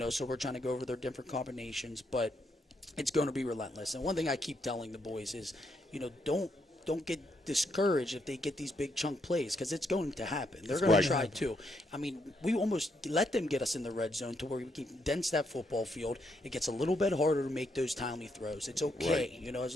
So we're trying to go over their different combinations, but it's going to be relentless. And one thing I keep telling the boys is, don't get discouraged if they get these big chunk plays, because it's going to happen. They're going to try too. I mean, we almost let them get us in the red zone to where we can condense that football field. It gets a little bit harder to make those timely throws. It's okay, and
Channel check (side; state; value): both; normal; correlation 0.77